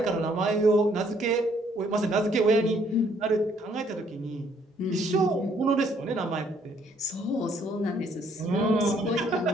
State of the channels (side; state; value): both; normal; correlation 0.65